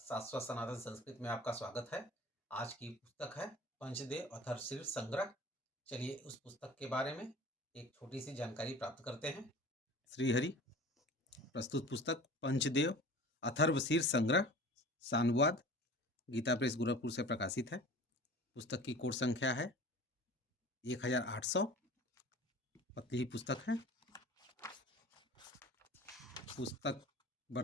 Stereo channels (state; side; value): normal; both; correlation 0.41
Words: सनातन संस्कृत में आपका स्वागत है। आज की पुस्तक है पंचदेव अथर्वशीर संग्रह। चलिए उस पुस्तक के बारे में एक छोटी सी जानकारी प्राप्त करते हैं। श्रीहरि प्रस्तुत पुस्तक पंचदेव अथर्वशीर संग्रह सानुवाद गीता प्रेस गोरखपुर से प्रकाशित है। पुस्तक की कोड संख्या है 1800। पतली ही पुस्तक है। पुस्तक